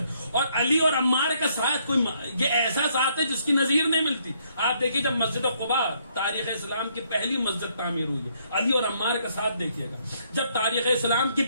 اور علی اور عمار کا ساتھ کوئی یہ ایسا ساتھ ہے جس کی نظیر نہیں ملتی. آپ دیکھیے جب مسجد قباء تاریخ اسلام کی پہلی مسجد تعمیر ہوئی ہے، علی اور عمار کا ساتھ دیکھیے گا. جب تاریخ اسلام کی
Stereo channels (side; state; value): both; inverted; correlation -0.70